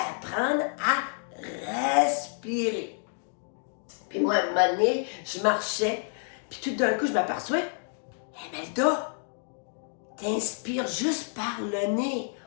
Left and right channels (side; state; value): right; silent; 59 dB below the other